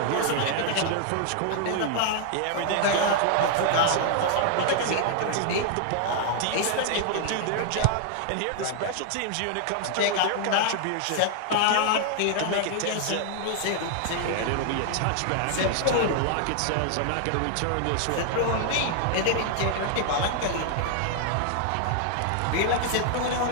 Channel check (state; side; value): different; both; correlation 0.00